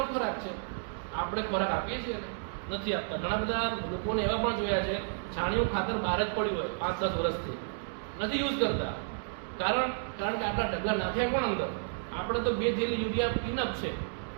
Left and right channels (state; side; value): silent; left; 57 dB below the other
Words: ખોરાક છે. આપણે ખોરાક આપીએ છીએ ને નથી આપતા. ઘણા બધા લોકોને એવા પણ જોયા છે છાણિયું ખાતર બહાર જ પડ્યું હોય 5-10 વર્ષથી, નથી યુઝ કરતા. કારણ કે આપણા ઢગલા નાખ્યા કોણ અંદર, આપણે તો 2 થેલી યુરિયા ઇનફ છે.